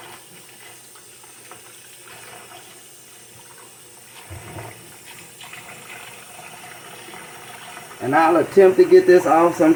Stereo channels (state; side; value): identical; both; correlation 1.00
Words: And I'll attempt to get this off.